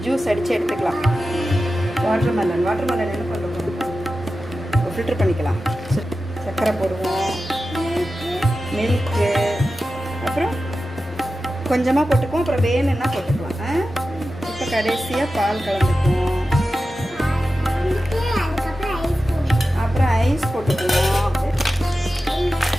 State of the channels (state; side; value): normal; both; correlation 0.93